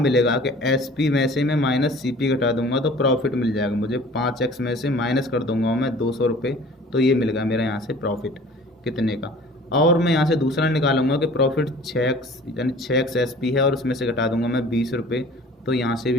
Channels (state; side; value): normal; both; correlation 0.47